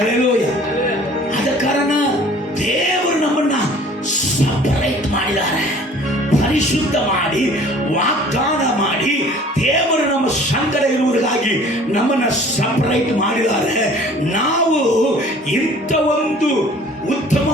ಆದ ಕಾರಣ ದೇವರು ನಮ್ಮನ್ನ ಸಪರೇಟ್ ಮಾಡಿದ್ದಾರೆ, ಪರಿಶುದ್ಧ ಮಾಡಿ, ವಾಗ್ದಾನ ಮಾಡಿ, ದೇವರು ನಮ್ಮ ಸಂಗಡ ಇರುವುದಕ್ಕಾಗಿ ನಮ್ಮನ್ನ ಸಪರೇಟ್ ಮಾಡಿದ್ದಾರೆ. ನಾವು ಇಂಥ ಒಂದು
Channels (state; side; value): normal; both; correlation 0.50